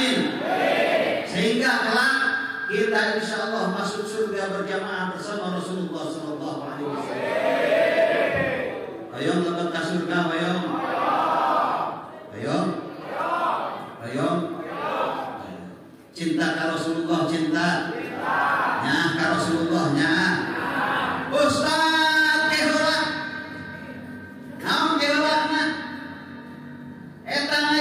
Sehingga kelak kita kita insya Allah masuk surga berjamaah bersama Rasulullah Sallallahu Alaihi Wasallam. Ayo lebet ke surga, ayo. Ayo. Ayo. Cinta ke Rasulullah, cinta. Nah, ke Rasulullahnya. Ustaz keheula. Naon keheulana? Eta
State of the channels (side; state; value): both; identical; correlation 1.00